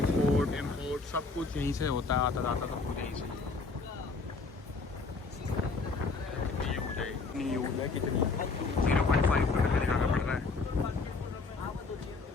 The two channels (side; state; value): right; quieter; 4.1 dB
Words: इम्पोर्ट सब कुछ यहीं से होता है, आता जाता सब कुछ यहीं से। कितनी यूज है कितनी 0.5 किलोमीटर जाना पड़ रहा है।